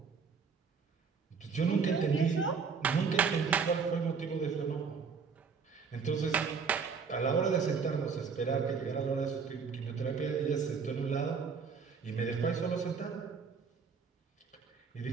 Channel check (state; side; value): quieter; left; 5.6 dB